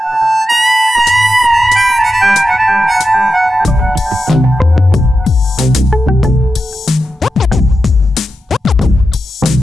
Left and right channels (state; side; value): normal; both; correlation 0.89